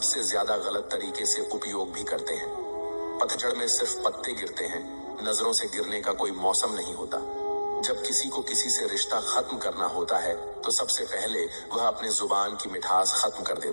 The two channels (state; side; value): inverted; both; correlation -1.00